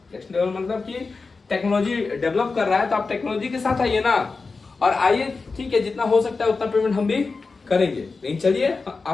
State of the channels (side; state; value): right; quieter; 4.2 dB